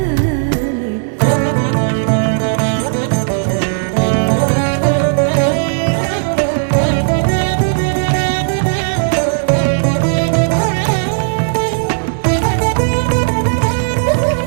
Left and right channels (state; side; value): silent; left; digital silence